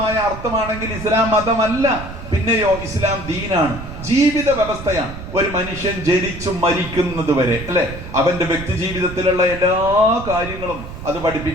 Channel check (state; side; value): noise; right; rumble, 11 dB below the sound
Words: അർത്ഥമാണെങ്കിൽ ഇസ്ലാം മതമല്ല, പിന്നെയോ ഇസ്ലാം ദീനാണ്, ജീവിത വ്യവസ്ഥയാണ്. ഒരു മനുഷ്യൻ ജനിച്ചു മരിക്കുന്നത് വരെ അല്ലെ, അവന്റെ വ്യക്തി ജീവിതത്തിലുള്ള എല്ലാ കാര്യങ്ങളും അത്